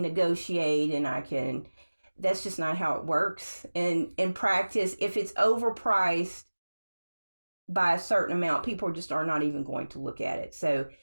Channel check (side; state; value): both; inverted; correlation -1.00